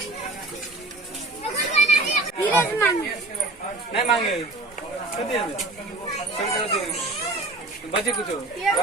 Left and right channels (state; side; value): quieter; left; 3.1 dB